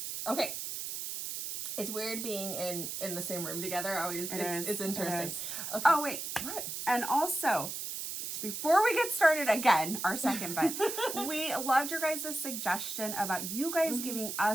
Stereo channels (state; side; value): noise; right; hiss, 5 dB below the sound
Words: Okay. It's weird being in the same room together. It's interesting. It is. Okay. Oh, wait. What? And also, before we get started again, our second bet, we loved your guys' suggestion about you guys giving